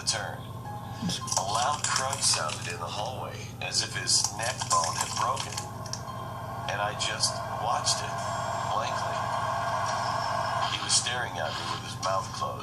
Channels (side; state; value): both; identical; correlation 1.00